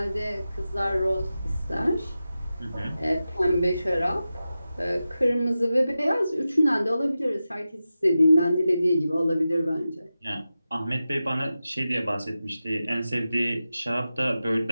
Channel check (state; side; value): inverted; both; correlation -0.93